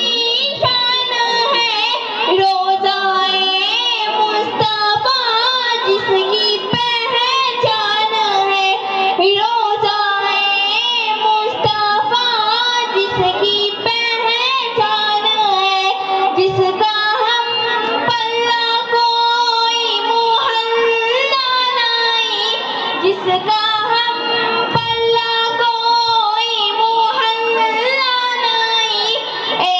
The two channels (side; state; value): both; identical; correlation 1.00